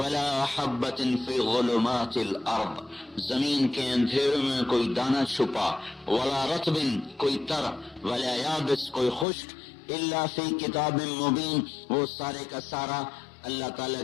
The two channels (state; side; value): drops out; right; at 9.2 s